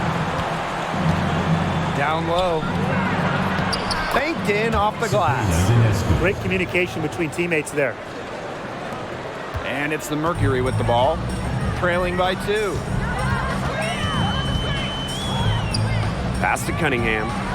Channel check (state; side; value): identical; both; correlation 1.00